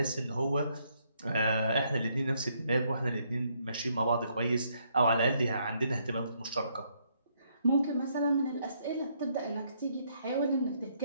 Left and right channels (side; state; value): both; inverted; correlation -0.72